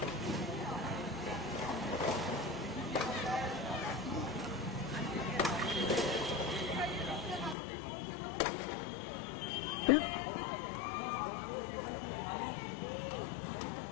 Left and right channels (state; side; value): drops out; right; at 7.6 s